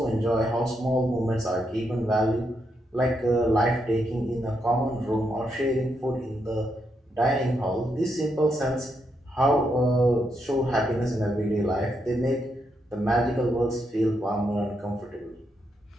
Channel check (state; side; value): normal; both; correlation 0.80